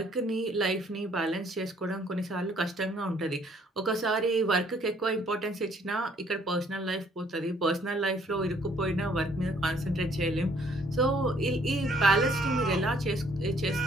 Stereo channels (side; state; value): both; normal; correlation 0.63